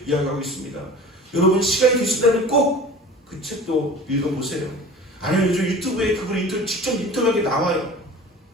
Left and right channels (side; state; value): both; normal; correlation 0.40